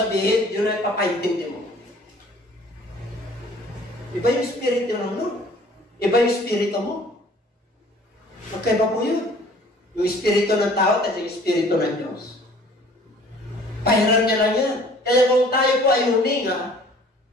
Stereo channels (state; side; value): normal; both; correlation 0.52